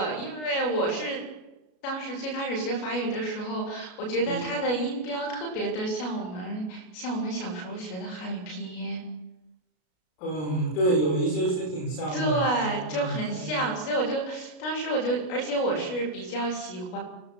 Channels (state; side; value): late; right; 33 ms